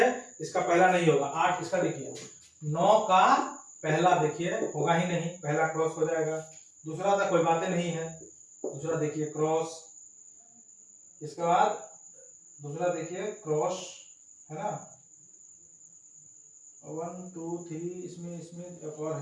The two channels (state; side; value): identical; both; correlation 1.00